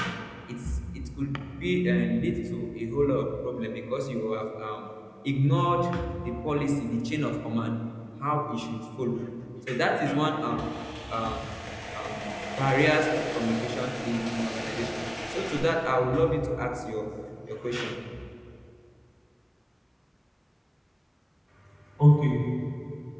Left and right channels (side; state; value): both; identical; correlation 1.00